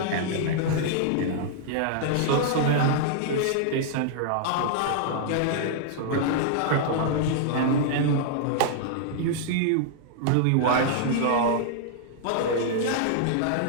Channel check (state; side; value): different; both; correlation -0.01